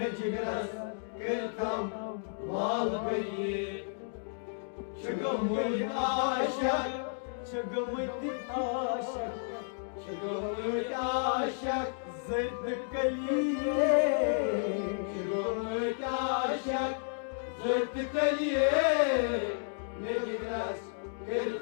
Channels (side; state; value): right; silent; digital silence